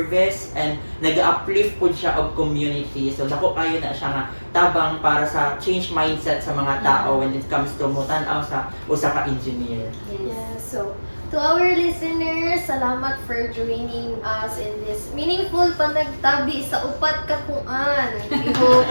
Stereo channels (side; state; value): both; inverted; correlation -1.00